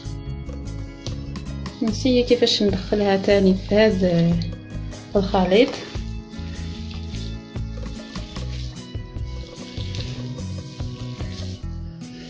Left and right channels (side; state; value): both; identical; correlation 1.00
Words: نسيي كيفاش ندخلها تاني في هذا الخليط.